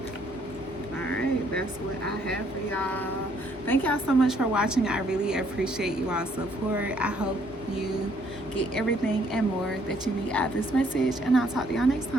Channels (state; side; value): normal; both; correlation 0.66